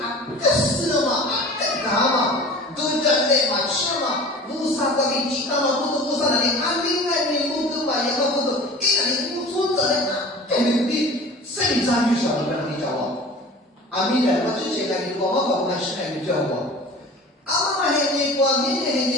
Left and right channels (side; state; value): both; normal; correlation 0.40